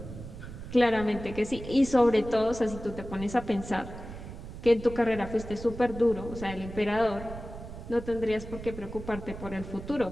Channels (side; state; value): right; noise; rumble, 11 dB below the sound